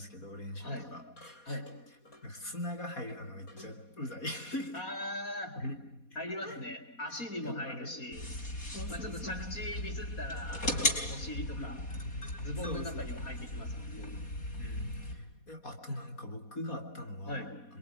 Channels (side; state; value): right; late; 4.2 ms